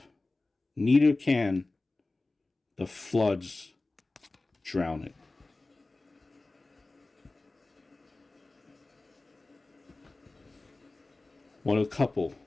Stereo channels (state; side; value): quieter; right; 3.2 dB